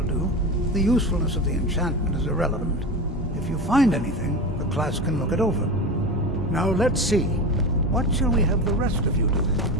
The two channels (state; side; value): normal; both; correlation 0.25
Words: do. The usefulness of the enchantment is irrelevant. If you find anything, the class can look it over. Now let's see. What shall we have the rest of you do?